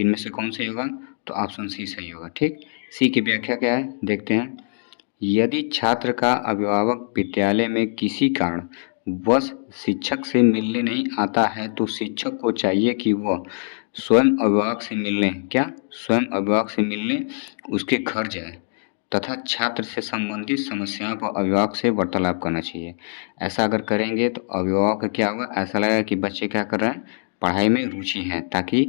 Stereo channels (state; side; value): silent; right; digital silence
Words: में से कौन सही होगा? तो ऑप्शन सी सही होगा। ठीक, सी की व्याख्या क्या है देखते हैं। यदि छात्र का अभिभावक विद्यालय में किसी कारण वश शिक्षक से मिलने नहीं आता है तो शिक्षक को चाहिए कि वह स्वयं अभिभावक से मिलने उसके घर जाए तथा छात्र से संबंधित समस्याओं पर अभिभावक से वार्तालाप करना चाहिए। ऐसा अगर करेंगे तो अभिभावक का क्या होगा, ऐसा लगेगा कि बच्चे क्या कर रहे हैं, पढ़ाई में रुचि है,